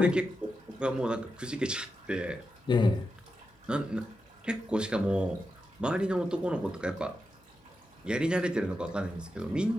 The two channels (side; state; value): both; normal; correlation 0.88